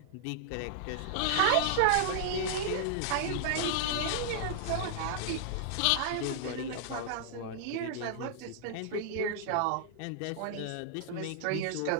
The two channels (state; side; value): different; both; correlation -0.01